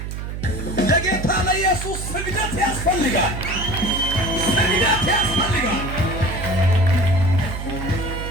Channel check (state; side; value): noise; right; hum, 6 dB below the sound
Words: ለጌታ ለኢየሱስ ስግደት ያስፈልጋል ስግደት ያስፈልጋል